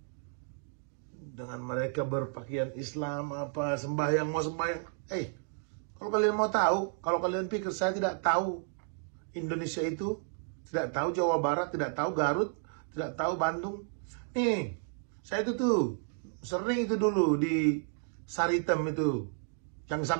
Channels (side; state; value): left; silent; 55 dB below the other